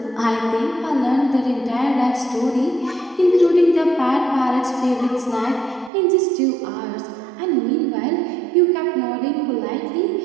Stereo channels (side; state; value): left; drops out; at 5.9 s